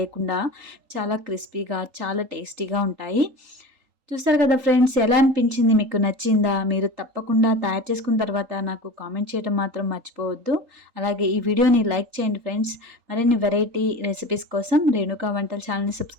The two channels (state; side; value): late; left; 3.8 ms